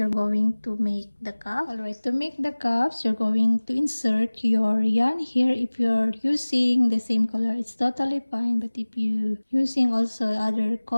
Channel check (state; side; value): inverted; both; correlation -1.00